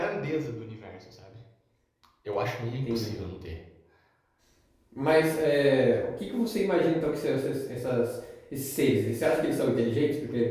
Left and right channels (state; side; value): identical; both; correlation 1.00